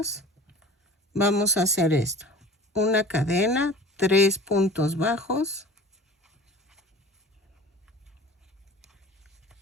vamos a hacer esto. Una cadena, 3 puntos bajos,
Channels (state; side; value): normal; both; correlation 0.41